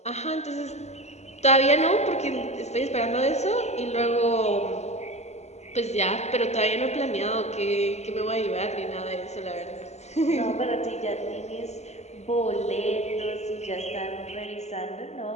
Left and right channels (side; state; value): right; late; 0.32 ms